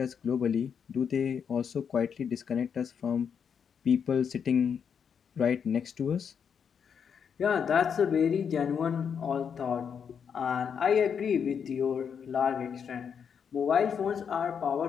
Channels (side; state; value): right; quieter; 7.1 dB